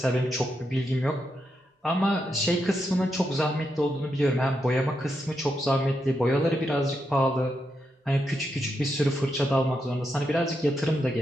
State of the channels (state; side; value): normal; both; correlation 0.83